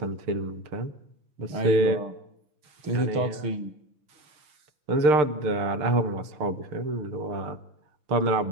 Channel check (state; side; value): late; left; 6.5 ms